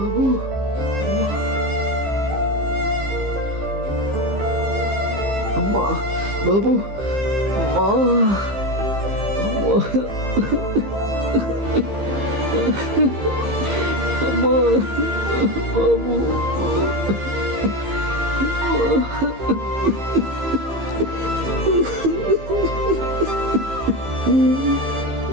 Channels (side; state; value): left; late; 15 ms